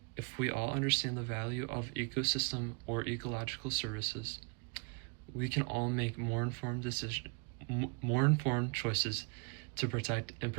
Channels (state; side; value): quieter; left; 35.2 dB